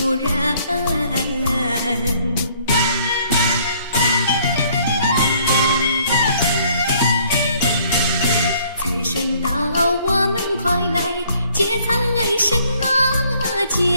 人。财神到我们快来接财神啊，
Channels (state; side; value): inverted; both; correlation -0.62